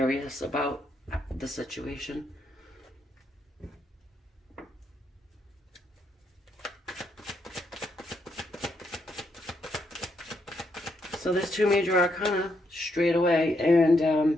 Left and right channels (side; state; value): both; normal; correlation 0.77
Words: about the situation. So there's two major arcana straight away, and